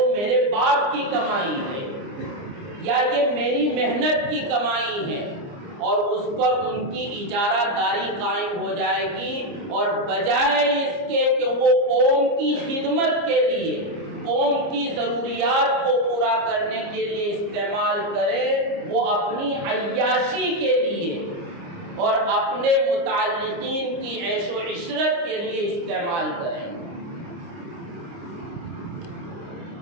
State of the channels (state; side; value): late; left; 29 ms